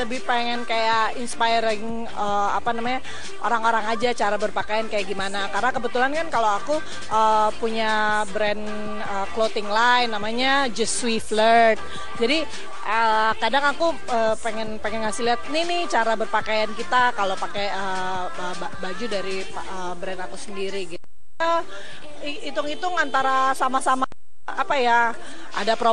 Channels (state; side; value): identical; both; correlation 1.00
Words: pengen kayak inspiring orang-orang aja cara berpakaian kayak gimana. Karena kebetulan kan kalau aku punya brand clothing line namanya Just Sweet Flirt. Jadi kadang aku pengen ngasih lihat nih cara berpakaian kita kalau pakai baju dari brand aku sendiri gitu. Hitung-hitung antara sama-sama ada